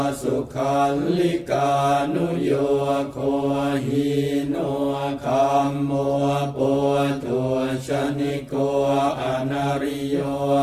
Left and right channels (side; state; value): both; identical; correlation 1.00